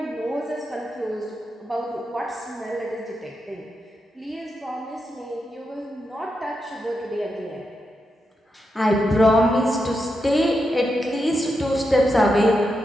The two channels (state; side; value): normal; both; correlation 0.86